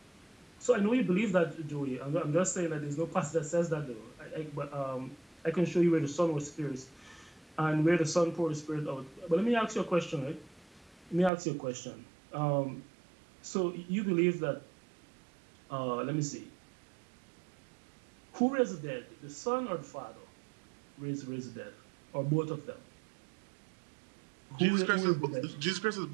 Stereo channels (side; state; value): left; drops out; at 11.3 s